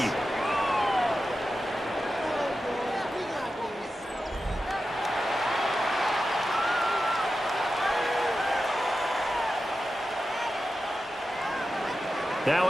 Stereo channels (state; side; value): normal; both; correlation 0.92